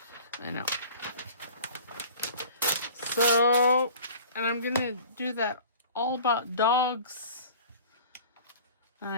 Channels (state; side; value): inverted; both; correlation -0.44